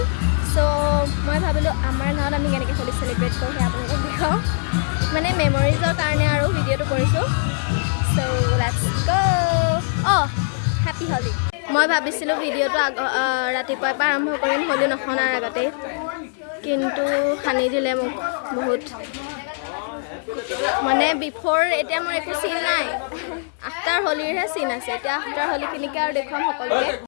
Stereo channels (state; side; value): silent; right; digital silence